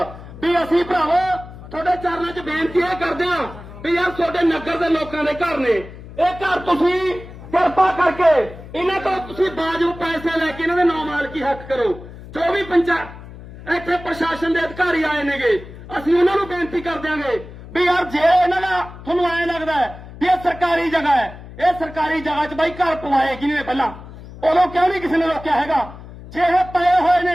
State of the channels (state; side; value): noise; left; hum, 15 dB below the sound